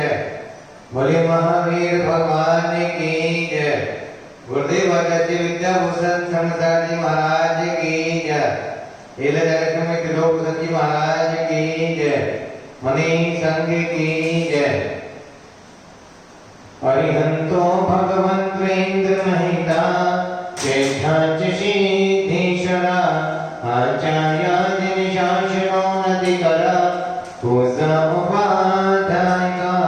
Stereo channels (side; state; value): both; identical; correlation 1.00